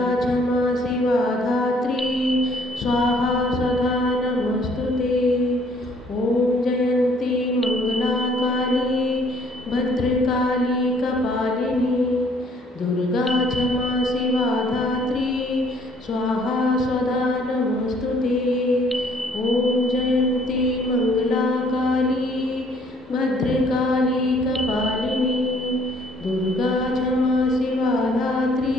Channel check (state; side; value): normal; both; correlation 0.61